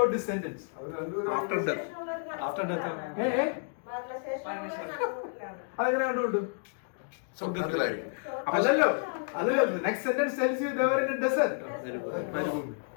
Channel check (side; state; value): right; silent; 57 dB below the other